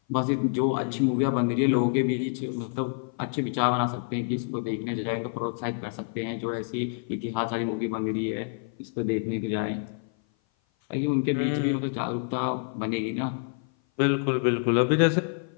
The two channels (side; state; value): right; silent; 56 dB below the other